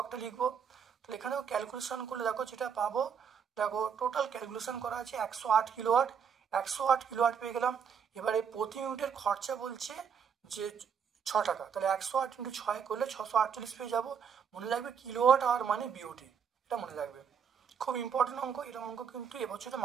লিখবো। তাহলে এখানেও ক্যালকুলেশন করলে দেখো যেটা পাবো, দেখো টোটাল ক্যালকুলেশন করা আছে 108 কিলোওয়াট। 108 কিলোওয়াট পেয়ে গেলাম। এবারে প্রতি ইউনিটের খরচা বলছে যে 6 টাকা, তাহলে 108 × 6 করলে 648 পেয়ে যাবো। মনে রাখবে কিলোওয়াট আওয়ার মানে বিওটি, এটা মনে রাখবে, খুব ইম্পর্টেন্ট অঙ্ক। এরকম অঙ্ক কিন্তু এবছরে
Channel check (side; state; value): left; quieter; 7.1 dB